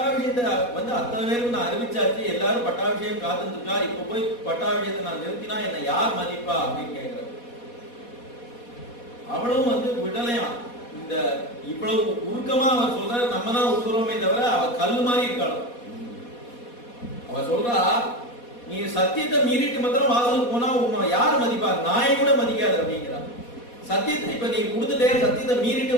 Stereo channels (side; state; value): right; late; 4.2 ms